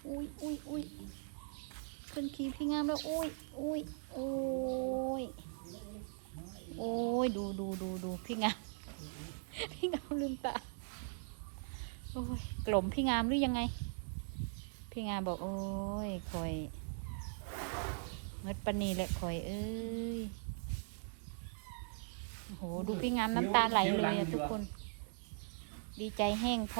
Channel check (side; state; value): left; silent; 51 dB below the other